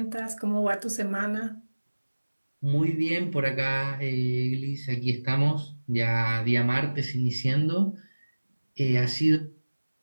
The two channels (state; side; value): inverted; both; correlation -1.00